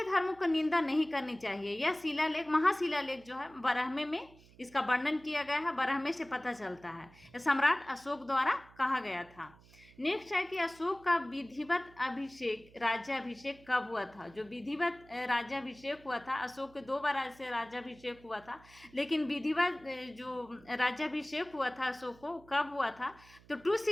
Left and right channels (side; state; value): right; noise; hum, 25 dB below the sound